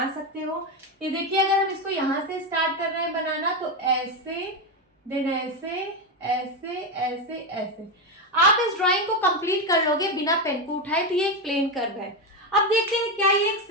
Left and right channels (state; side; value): normal; both; correlation 0.11